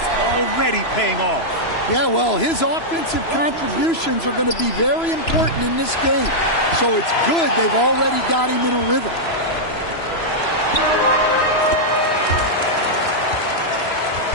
already paying off. Yeah, well, his offensive contributions are going to be very important in this game. So it's good they've already got him in a rhythm.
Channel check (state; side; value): late; right; 3.0 ms